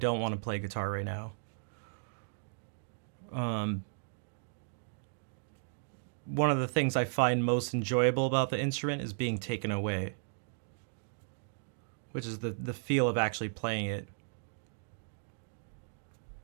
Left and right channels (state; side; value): silent; left; digital silence